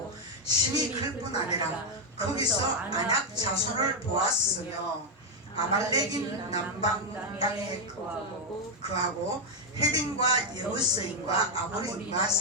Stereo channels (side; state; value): both; normal; correlation 0.02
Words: 심이 클 뿐 아니라 거기서 안악 자손을 보았으며 아말렉인 남방 땅에 거하고 헤딘과 여부스인과 아모리인과